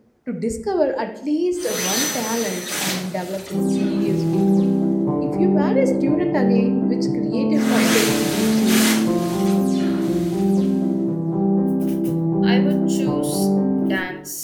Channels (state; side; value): identical; both; correlation 1.00